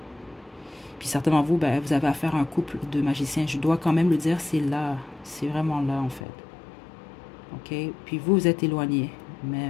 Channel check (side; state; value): right; drops out; at 6.2 s